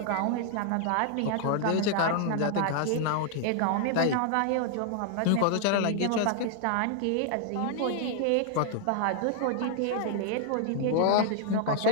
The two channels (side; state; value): both; different; correlation -0.01